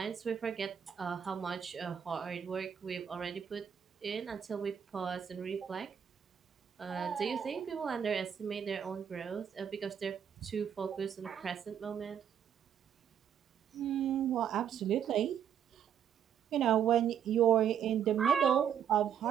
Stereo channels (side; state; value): left; quieter; 8.6 dB